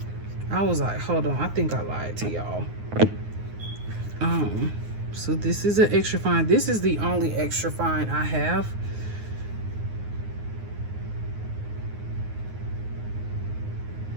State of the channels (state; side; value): late; left; 9.6 ms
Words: I was like, hold on, I think I lied to y'all. So this is an extra fine. This is the only extra fine I have.